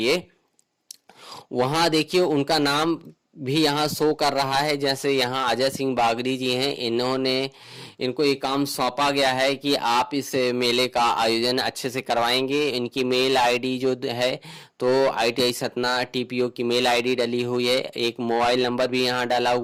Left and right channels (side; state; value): both; identical; correlation 1.00